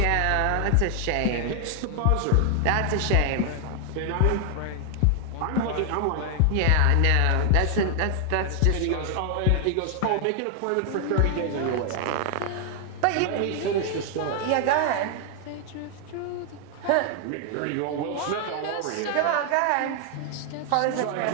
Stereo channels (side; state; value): both; different; correlation 0.00